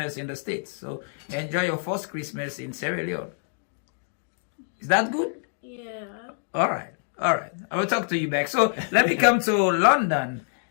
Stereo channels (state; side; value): silent; right; digital silence